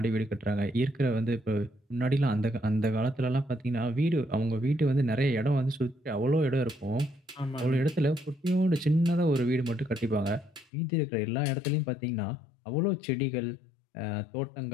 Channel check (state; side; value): drops out; right; at 10.7 s